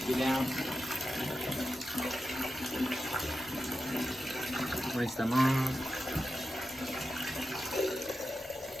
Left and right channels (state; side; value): normal; both; correlation 0.91